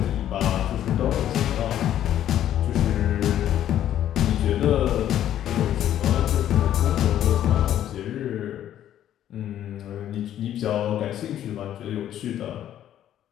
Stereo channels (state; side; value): quieter; right; 11.3 dB